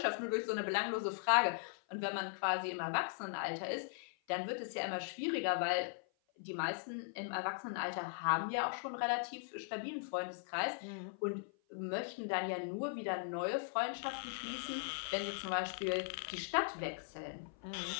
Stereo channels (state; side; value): silent; right; 52 dB below the other